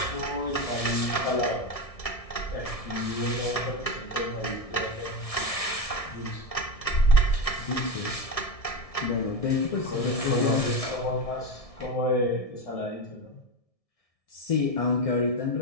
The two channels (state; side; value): late; right; 1.6 ms